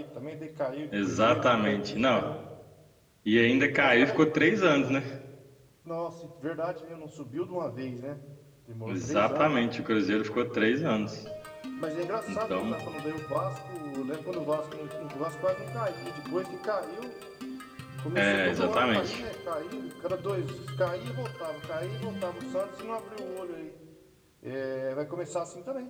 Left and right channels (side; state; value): both; identical; correlation 1.00